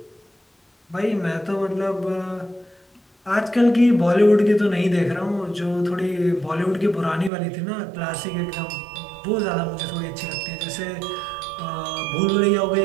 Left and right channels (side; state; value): left; drops out; at 7.3 s